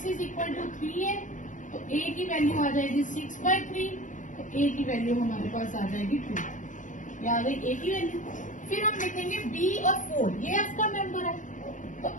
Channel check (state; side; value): late; right; 0.37 ms